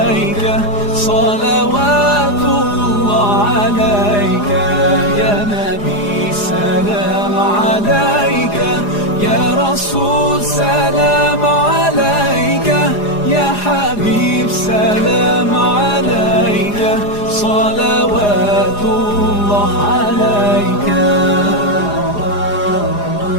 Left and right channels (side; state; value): right; late; 4.9 ms